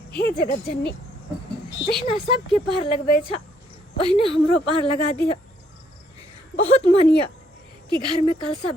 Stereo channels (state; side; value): normal; both; correlation 0.69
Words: हे जगत जननी, जहिना सबके पार लगबै छ ओहिने हमरो पार लगा दिया। बहुत मानिया कि घर में कलसा